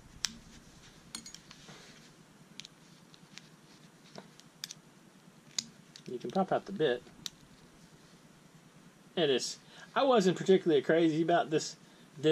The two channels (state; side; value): identical; both; correlation 1.00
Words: It is. I wasn't particularly crazy about this